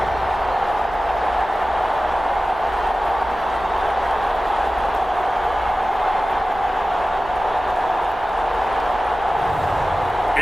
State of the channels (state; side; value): noise; left; hum, 20 dB below the sound